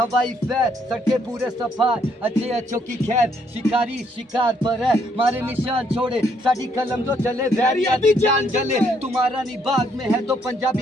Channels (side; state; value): both; normal; correlation 0.70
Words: फैर। सड़कें पूरे सफाई अच्छों की खैर, शिकारी शिकार पर है मारे निशान छोड़े। साड़ी कलम जो चले वैरिया दी जान जले। तुम्हारा नी बाग में है तो